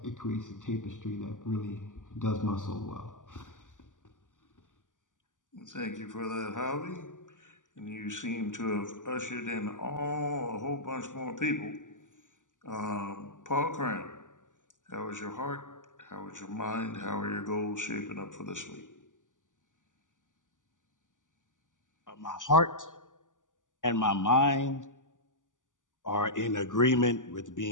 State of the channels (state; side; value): late; right; 0.87 ms